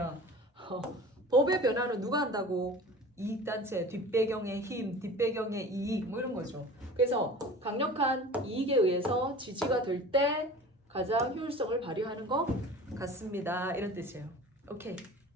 법의 변화는 누가 한다고? 이익단체, 뒷배경의 힘, 뒷배경의 이익 뭐 이런 거죠. 그래서 강력한 이익에 의해서 지지가 될 때 가장 효율성을 발휘하는 것 같습니다. 이런 뜻이에요. 오케이.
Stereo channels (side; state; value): both; normal; correlation 0.40